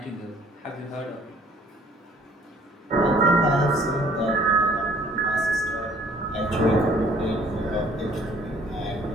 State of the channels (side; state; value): both; normal; correlation 0.57